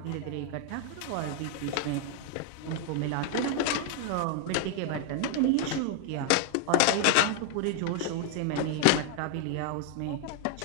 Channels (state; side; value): different; both; correlation 0.00